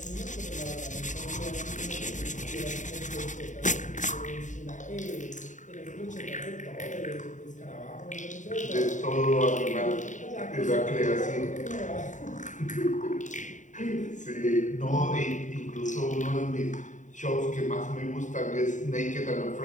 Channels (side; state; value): right; late; 0.36 ms